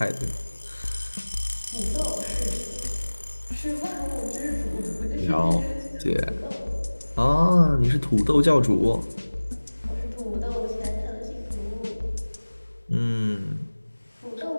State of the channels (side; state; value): both; inverted; correlation -1.00